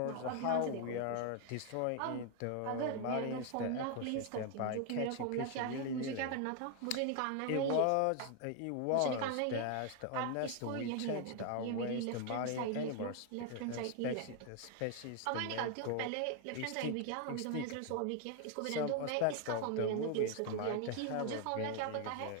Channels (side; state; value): both; different; correlation 0.00